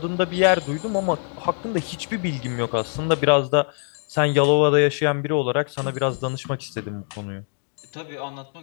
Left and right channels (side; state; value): right; silent; 55 dB below the other